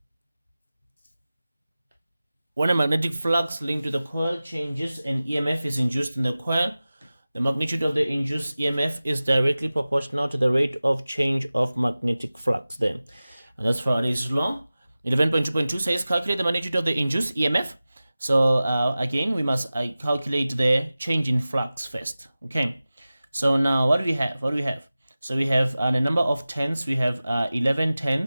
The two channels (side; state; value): both; inverted; correlation -0.97